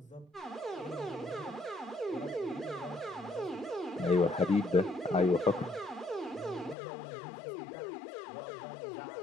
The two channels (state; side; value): drops out; right; at 6.8 s